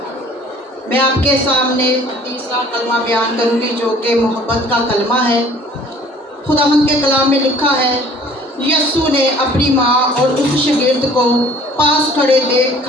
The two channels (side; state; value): both; normal; correlation 0.53